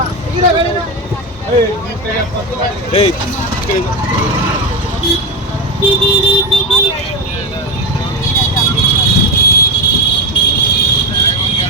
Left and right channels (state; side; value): normal; both; correlation 0.15